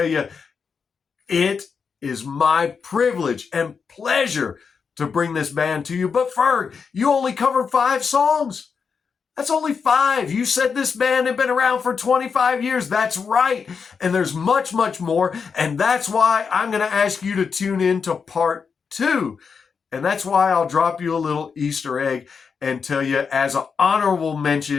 you, it is my privilege and pleasure to bring this band to you. But Ferg, you only covered 5 songs. That's only 5. You said this band had been around for 25 years. That's right. And there's much, much more. And that's why I'm going to ask you to tune in to part 2. And that's why I'll drop you a little Easter egg and tell you, as an honorable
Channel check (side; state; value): right; quieter; 5.8 dB